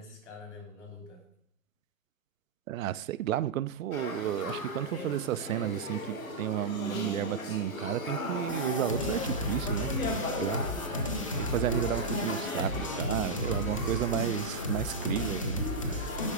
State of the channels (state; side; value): quieter; left; 3.8 dB